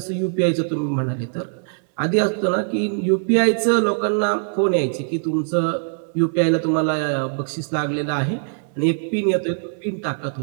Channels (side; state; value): left; silent; 64 dB below the other